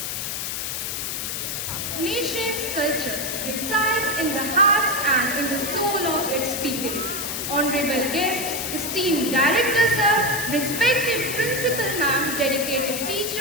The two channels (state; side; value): noise; left; hiss, 3 dB below the sound